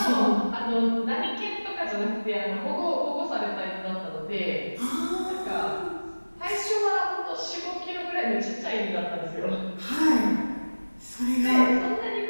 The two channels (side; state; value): both; inverted; correlation -1.00